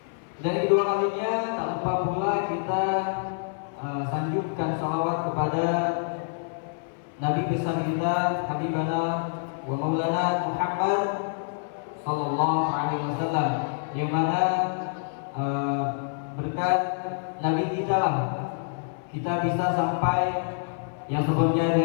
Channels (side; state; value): right; silent; 59 dB below the other